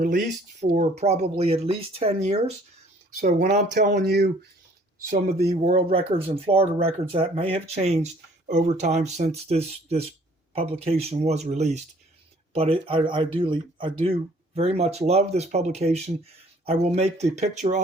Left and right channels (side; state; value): both; normal; correlation 0.57